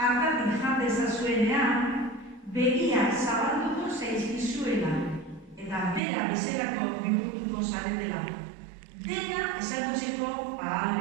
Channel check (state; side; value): drops out; left; at 6.0 s